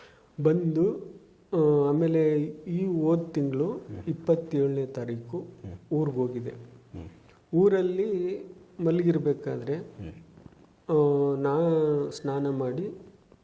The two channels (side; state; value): both; identical; correlation 1.00